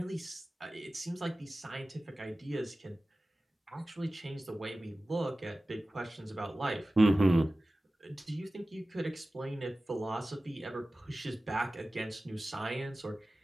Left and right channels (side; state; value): both; normal; correlation 0.96